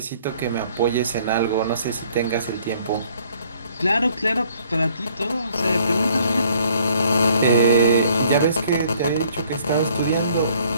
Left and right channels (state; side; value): inverted; both; correlation -0.60